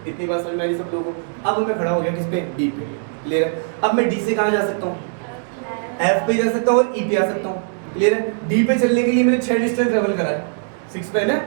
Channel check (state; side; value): silent; left; digital silence